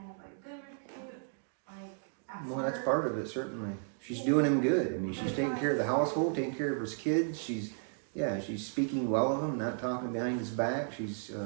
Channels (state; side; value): silent; left; digital silence